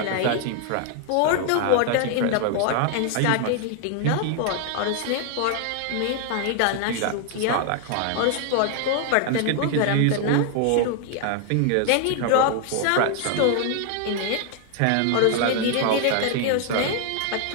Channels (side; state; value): both; different; correlation 0.00